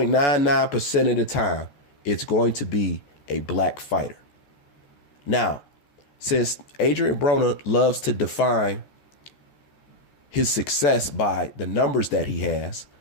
of the time, it's going to be a black fighter. Now, since ADRIEN Broner loves to define his success by the numbers that he has,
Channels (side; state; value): right; late; 14 ms